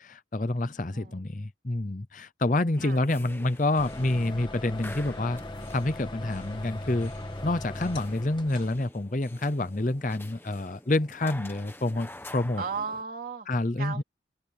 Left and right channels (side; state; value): both; normal; correlation 0.69